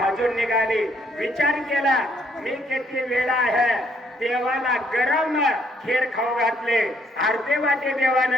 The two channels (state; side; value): normal; both; correlation 0.69